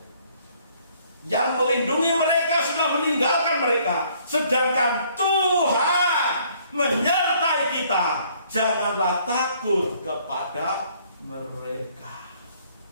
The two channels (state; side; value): inverted; both; correlation -0.62